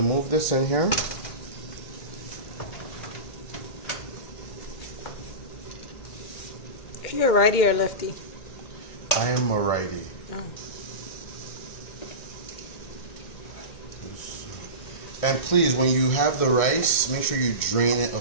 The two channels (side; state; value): right; late; 1.6 ms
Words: move this in here. Are you a righty or a lefty? I am a righty. Oh. And please, when you have the rice, make sure you drain it